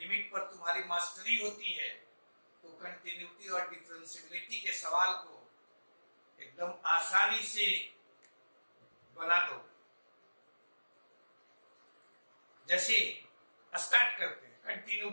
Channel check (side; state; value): both; inverted; correlation -1.00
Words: पर तुम्हारी मास्टरी होती है तो कंटिन्यूटी और डिफरेंशियबिलिटी के सवाल को एकदम आसानी से बना दो। जैसे स्टार्ट करते हैं